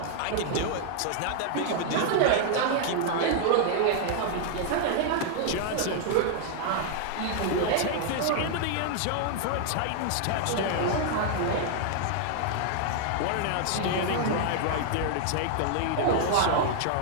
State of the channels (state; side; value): different; both; correlation 0.00